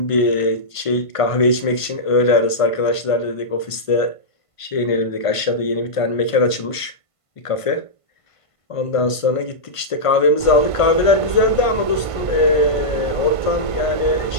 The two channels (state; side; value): late; right; 1.5 ms